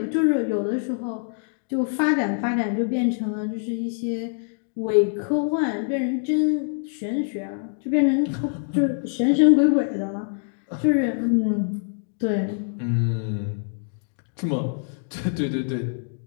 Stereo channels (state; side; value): silent; right; digital silence